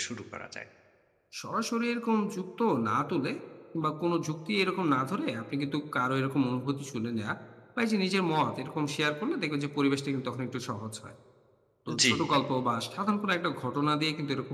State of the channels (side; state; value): both; identical; correlation 1.00